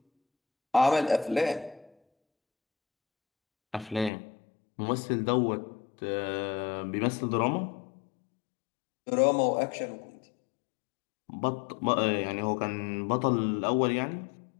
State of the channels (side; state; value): right; drops out; at 4.1 s